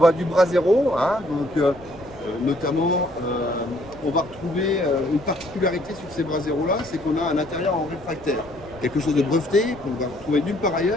du brasero, notamment on va retrouver une particularité sur ces braseros là, c'est qu'on a un intérieur en réfractaire, quelque chose de breveté qu'on va retrouver nulle part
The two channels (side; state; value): left; noise; rumble, 22 dB below the sound